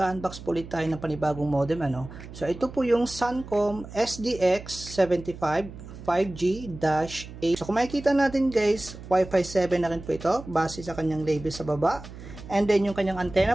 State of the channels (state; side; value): noise; right; hum, 14 dB below the sound